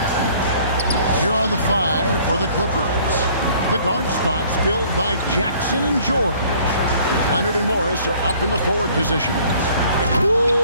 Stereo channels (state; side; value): inverted; both; correlation -0.56